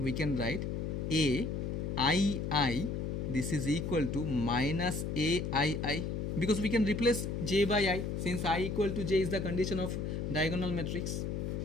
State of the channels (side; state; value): left; noise; hum, 2 dB below the sound